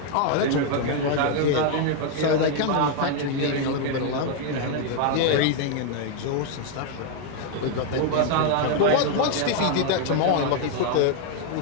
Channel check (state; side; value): different; both; correlation 0.00